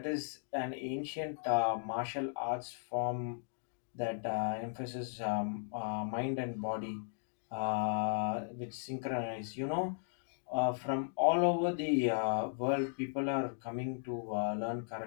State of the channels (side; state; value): right; silent; digital silence